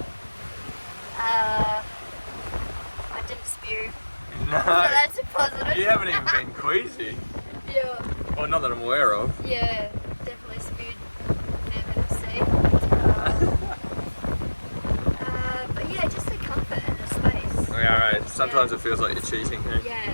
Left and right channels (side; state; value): both; inverted; correlation -1.00